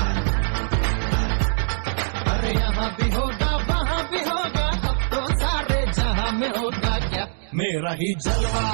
अरे यहाँ भी होगा वहाँ भी होगा, अब तो सारे जहां में होगा क्या मेरा ही जलवा,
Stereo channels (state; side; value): silent; left; digital silence